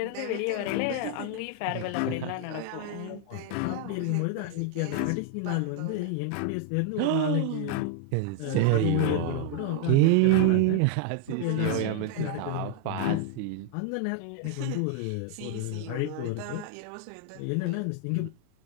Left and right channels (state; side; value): different; both; correlation 0.00